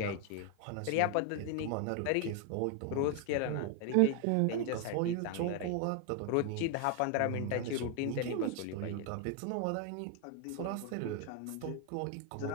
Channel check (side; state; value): both; different; correlation 0.00